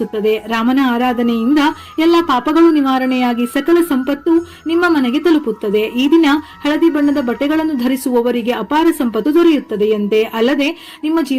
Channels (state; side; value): identical; both; correlation 1.00